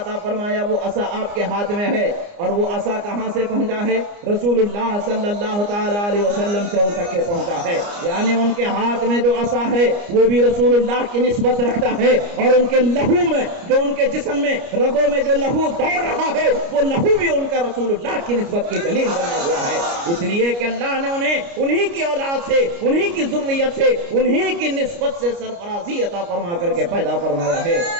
فرمایا، وہ عصا آپ کے ہاتھ میں ہے، اور وہ عصا کہاں سے پہنچا ہے؟ رسول اللہ صلی اللہ تعالی علیہ وسلم سے ان تک کے پہنچا ہے، یعنی ان کے ہاتھ میں جو عصا ہے وہ بھی رسول اللہ کی نسبت رکھتا ہے، اور ان کے لہو میں، جو ان کے جسم میں، رگوں میں جو لہو دوڑ رہا ہے، وہ لہو بھی ان کا رسول اللہ کی نسبت کی دلیل بنا ہوا ہے، اس لیے کہ اللہ نے انہیں انہی کی اولاد سے، انہی کی ذریت سے، انہی کی نسبت سے سرفراز عطا فرما کر کے پیدا فرمایا ہے۔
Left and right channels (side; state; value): left; late; 29 ms